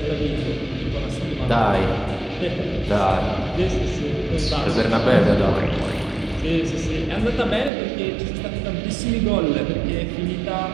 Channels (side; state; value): left; drops out; at 7.7 s